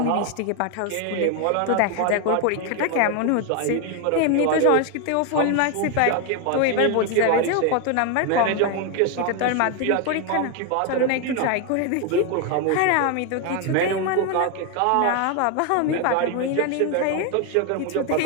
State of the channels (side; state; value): both; different; correlation 0.01